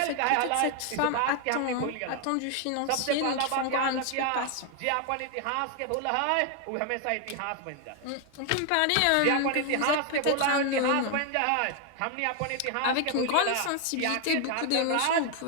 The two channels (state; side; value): different; both; correlation 0.00